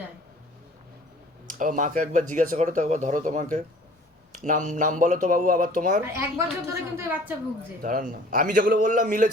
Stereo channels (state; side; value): normal; both; correlation 0.50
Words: মাকে একবার জিজ্ঞাসা করো তো, একবার ধরো তোমাকে। নাম বলো তো বাবু আবার তোমার। আর 1 বছর ধরে কিন্তু এই বাচ্চা ভুগছে। দাঁড়ান না, আমি যেগুলো বললাম